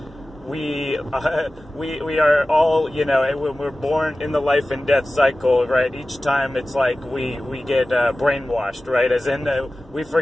we are all, you know, when we're born in the life and death cycle, right? Each time it's like we get brainwashed, right? As in we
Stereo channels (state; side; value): normal; both; correlation 0.96